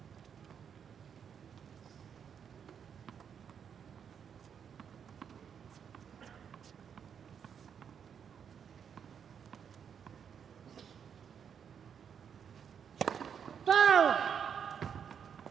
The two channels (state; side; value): quieter; left; 7.6 dB